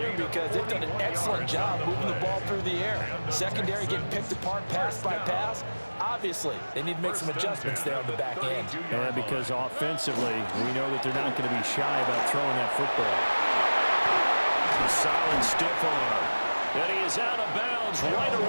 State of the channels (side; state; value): both; inverted; correlation -1.00